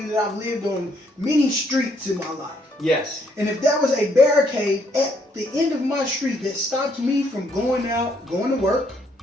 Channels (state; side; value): normal; both; correlation 0.70